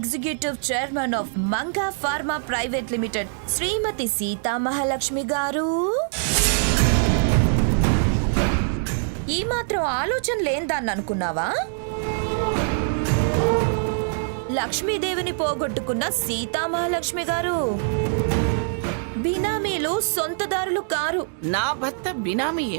chairman of Manga pharma private limited Shrimati Seethamahalakshmi garu. ఈ మాత్రం ఆలోచన లేందాన్ని అనుకున్నావా? లక్ష్మీదేవిని పోగొట్టుకున్న సీతామహాలక్ష్మి గారు బినామీలు వాళ్ళు సొంతదారులు కారు. నా భర్త బినామీ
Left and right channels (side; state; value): left; silent; digital silence